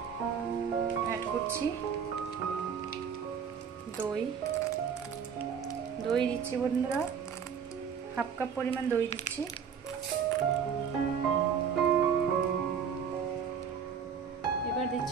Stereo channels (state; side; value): quieter; left; 7.0 dB